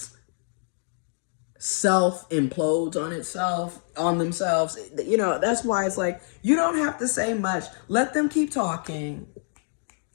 self-implodes on themselves. That's why it's like, you don't have to say much. Let them keep talking.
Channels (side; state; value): right; silent; 61 dB below the other